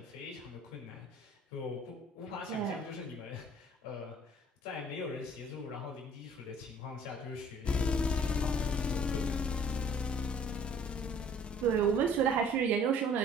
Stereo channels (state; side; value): normal; both; correlation 0.54